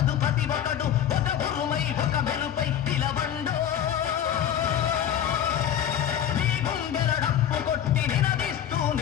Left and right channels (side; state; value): right; quieter; 9.8 dB